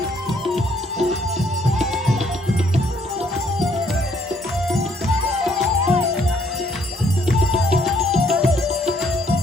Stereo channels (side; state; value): both; normal; correlation 0.67